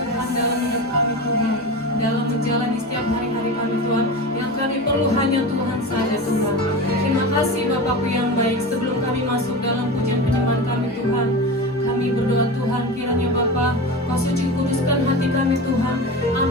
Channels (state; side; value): normal; both; correlation 0.27